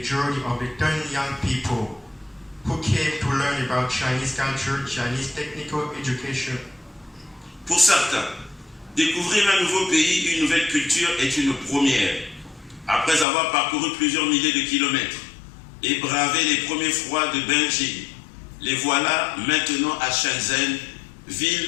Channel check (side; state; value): right; drops out; at 13.2 s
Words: journey of the 10 young people who came to learn about Chinese culture, Chinese technical education. Pour certains, découvrir un nouveau pays, une nouvelle culture est une première. Après avoir parcouru plusieurs milliers de kilomètres et bravé les premiers froids de Beijing, les voilà maintenant à Shenzhen,